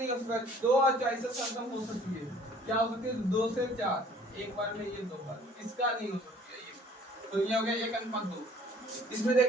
हो सकता, 2 और 4 से सरलतम हो सकती है। क्या हो सकती है? 2 से 4 एक बार में, ये 2 बार, इसका नहीं हो सकती है ये। तो ये हो गया 1:2। इसमें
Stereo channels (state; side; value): normal; both; correlation 0.54